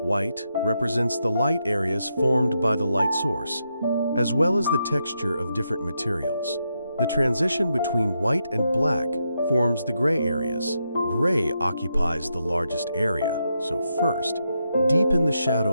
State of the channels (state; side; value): inverted; both; correlation -0.83